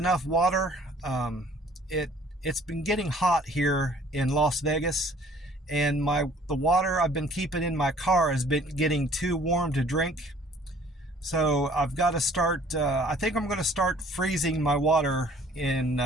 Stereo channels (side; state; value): both; normal; correlation 0.55